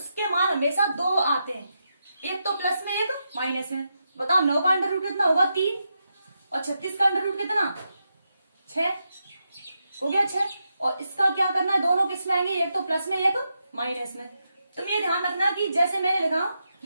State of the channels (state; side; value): inverted; both; correlation -0.85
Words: मान हमेशा 2 आते हैं, एक तो प्लस में एक माइनस में। बताओ 9 का अंडर रूट कितना होगा 3 और 36 का अंडर रूट कितना 6 हो गया 6। और इसका क्या करना है, दोनों किस में आएंगे, एक तो प्लस में एक माइनस में। तुम ये ध्यान रखना कि जैसे मैंने लिखा